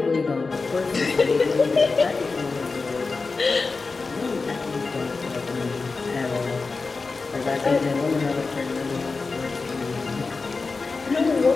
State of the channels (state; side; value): quieter; right; 4.2 dB